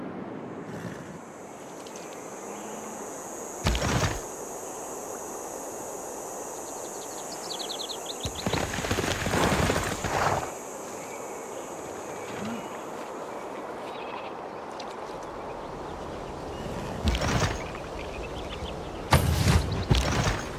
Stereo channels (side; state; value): both; identical; correlation 1.00